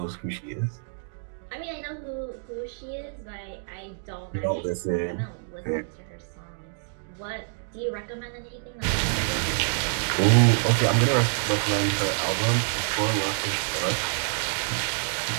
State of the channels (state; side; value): silent; left; digital silence